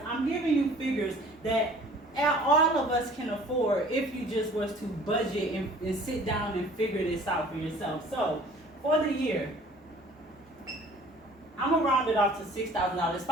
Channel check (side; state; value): both; normal; correlation 0.50